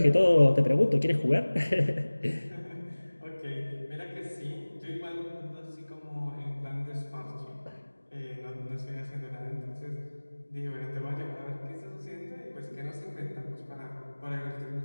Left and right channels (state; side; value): inverted; both; correlation -1.00